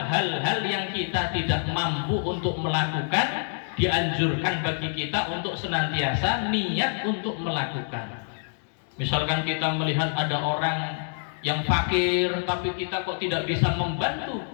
yang kita tidak mampu untuk melakukan, dianjurkan bagi kita untuk senantiasa niat untuk melakukan. Misalkan kita melihat ada orang yang fakir tapi kita kok tidak bisa membantu,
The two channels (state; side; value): silent; right; digital silence